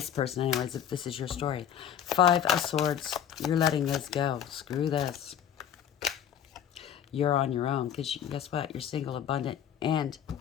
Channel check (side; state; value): right; quieter; 9.4 dB